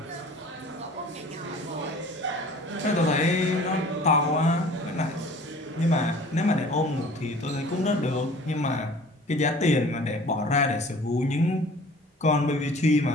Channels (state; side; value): normal; both; correlation 0.47